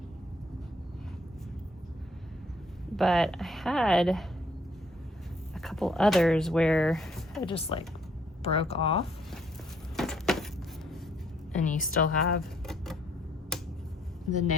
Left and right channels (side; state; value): both; normal; correlation 0.65